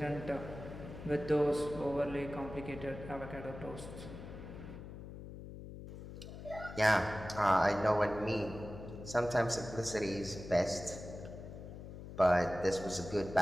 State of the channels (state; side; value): noise; left; hum, 12 dB below the sound